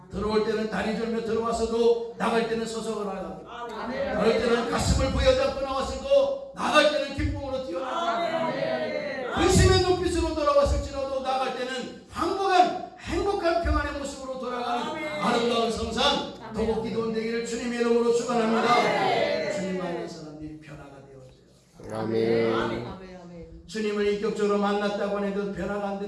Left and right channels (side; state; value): both; identical; correlation 1.00